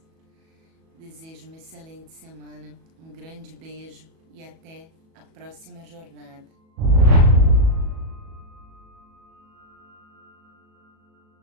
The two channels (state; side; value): late; left; 37 ms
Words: Desejo uma excelente semana, um grande beijo e até a próxima jornada.